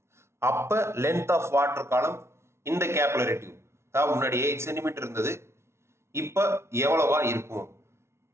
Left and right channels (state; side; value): late; left; 0.13 ms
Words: அப்போ லென்த் ஆஃப் வாட்டர் காலம் இந்த கேபிலரி டியூப், அதாவது முன்னாடி 8 சென்டிமீட்டர் இருந்தது, இப்போ எவ்வளவா இருக்கும்